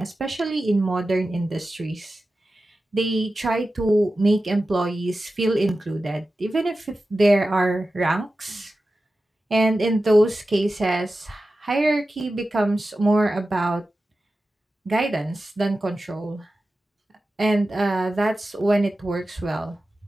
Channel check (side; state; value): both; normal; correlation 0.94